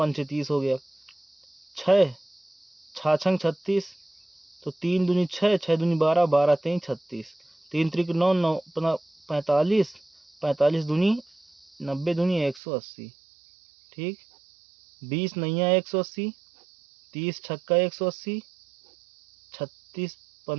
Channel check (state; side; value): drops out; left; at 12.6 s